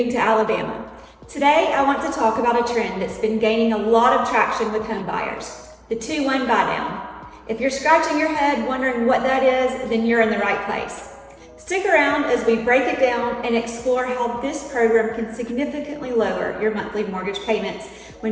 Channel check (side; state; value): both; identical; correlation 1.00